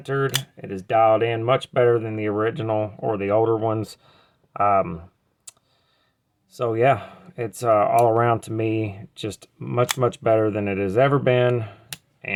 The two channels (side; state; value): both; identical; correlation 1.00